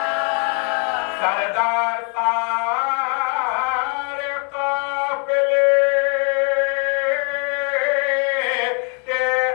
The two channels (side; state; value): right; quieter; 38.6 dB